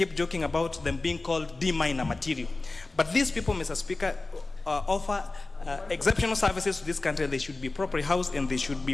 joking about them being called D-minor material. But these people, Mr. Speaker, offer exceptional services to this country. They should be properly housed and they should be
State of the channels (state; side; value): quieter; right; 3.3 dB